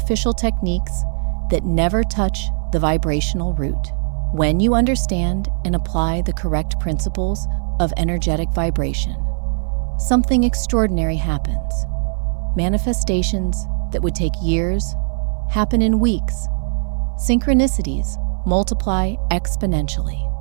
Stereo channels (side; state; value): left; silent; 63 dB below the other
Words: techniques that never touch the vibrational root. When you understand and apply the correct principles of energetic vibration, something extraordinary happens. Manifestations that would take years happen in weeks. Synchronicities multiply exponentially.